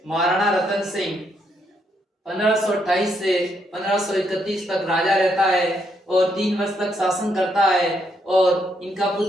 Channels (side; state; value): both; normal; correlation 0.76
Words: महाराणा रतन सिंह 1528 से 1531 तक राजा रहता है और 3 वर्ष तक शासन करता है। और इनका